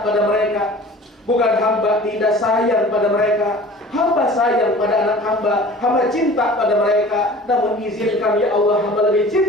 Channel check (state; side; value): normal; both; correlation 0.44